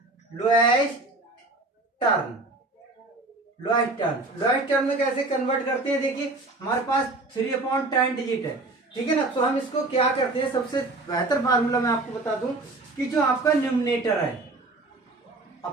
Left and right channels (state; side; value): quieter; left; 3.1 dB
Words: टर्म में कैसे कन्वर्ट करते हैं। देखिए हमारे पास 3/10 डिजिट है, ठीक है ना। तो हम इसको क्या करते हैं, सबसे बेहतर फार्मूला मैं आपको बता दूं कि जो आपका न्यूमरेटर है